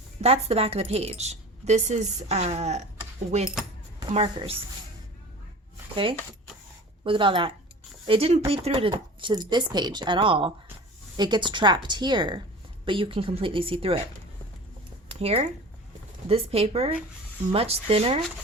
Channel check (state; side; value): normal; both; correlation 0.39